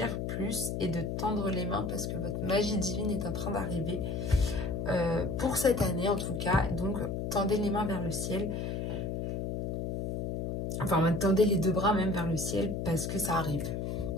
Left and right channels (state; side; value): noise; left; hum, 2 dB below the sound